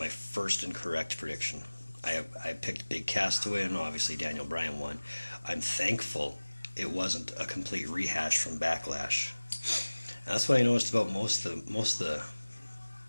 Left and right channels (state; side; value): inverted; both; correlation -1.00